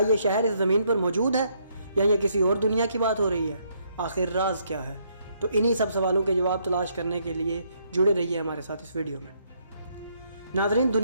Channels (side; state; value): both; inverted; correlation -0.72